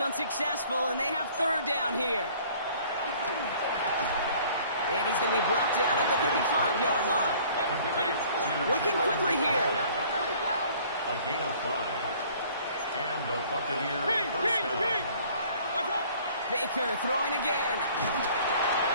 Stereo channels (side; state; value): both; inverted; correlation -0.54